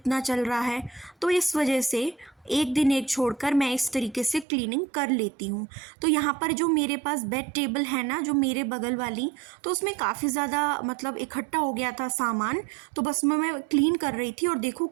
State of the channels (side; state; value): left; drops out; at 4.5 s